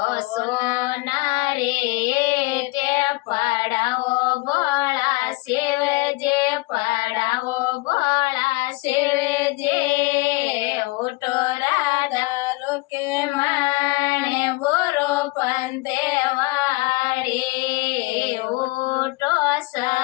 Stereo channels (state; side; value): quieter; right; 23.8 dB